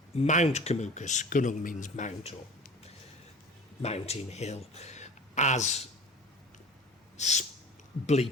Mount Kumukus, Gunung means mount or mountain hill, as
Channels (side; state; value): both; normal; correlation 0.39